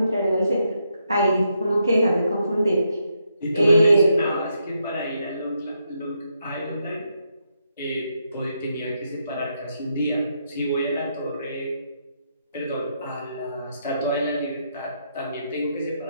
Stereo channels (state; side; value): inverted; both; correlation -0.79